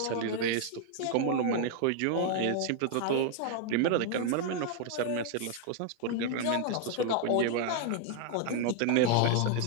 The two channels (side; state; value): both; different; correlation 0.00